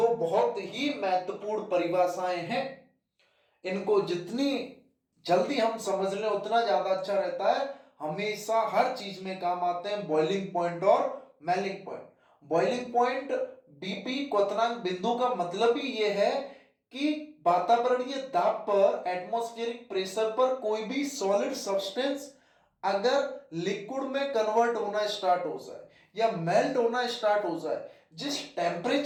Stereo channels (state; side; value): identical; both; correlation 1.00